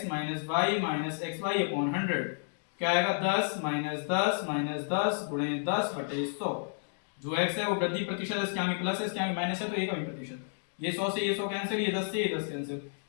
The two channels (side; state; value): right; silent; digital silence